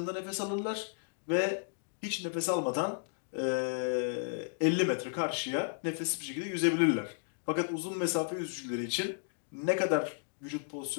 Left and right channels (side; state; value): right; silent; digital silence